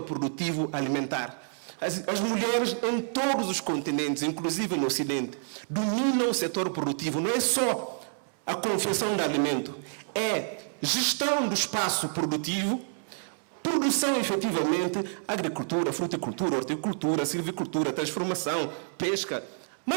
produtivo alimentar. As mulheres em todos os continentes, inclusive no Ocidente, dominam o setor produtivo. Não é só a confecção de alimento, é gestão do espaço produtivo, produção efetivamente, agricultura, fruticultura, horticultura, silvicultura, transformação, pesca,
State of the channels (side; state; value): left; silent; digital silence